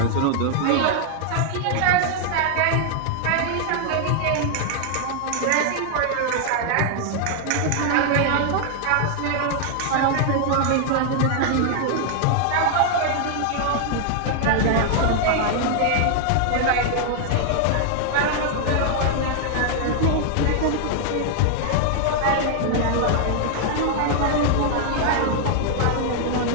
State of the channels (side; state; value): both; different; correlation 0.00